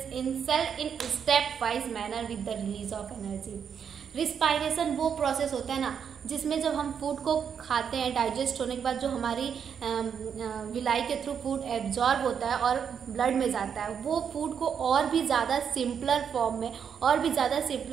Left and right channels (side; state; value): left; quieter; 7.5 dB